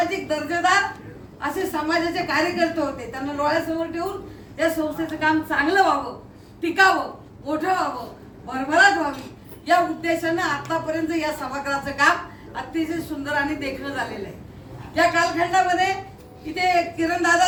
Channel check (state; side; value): identical; both; correlation 1.00